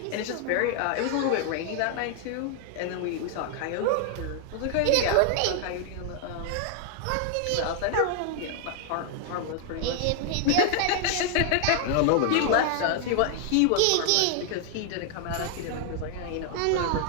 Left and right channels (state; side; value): different; both; correlation 0.00